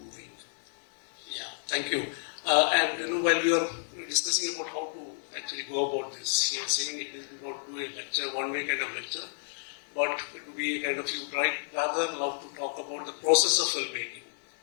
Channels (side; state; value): right; silent; 57 dB below the other